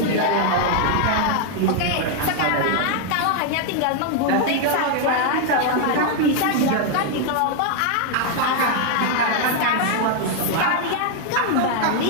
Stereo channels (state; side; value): different; both; correlation 0.00